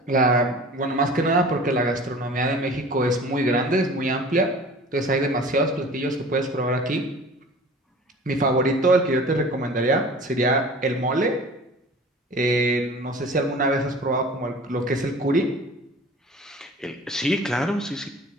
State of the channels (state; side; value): normal; both; correlation 0.42